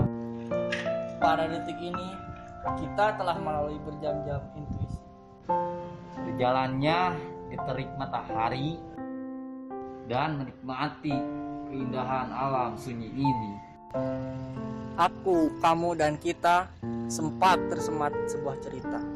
Pada detik ini, kita telah melalui berjam-jam intuisi. Berjalannya di terik matahari dan menikmati keindahan alam sunyi ini. Aku, kamu, dan kita sempat tersemat sebuah cerita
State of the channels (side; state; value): both; identical; correlation 1.00